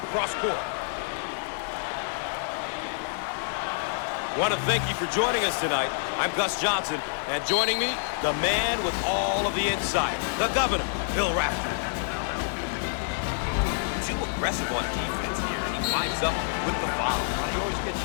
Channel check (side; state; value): right; silent; digital silence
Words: Cross court. Want to thank you for joining us tonight. I'm Gus Johnson, and joining me, the man with all of the insight, the governor, Bill Rafter. Too aggressive on defense here, and he winds up with the foul. You always get